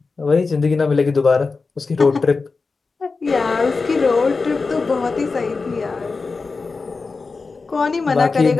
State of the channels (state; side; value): quieter; right; 4.2 dB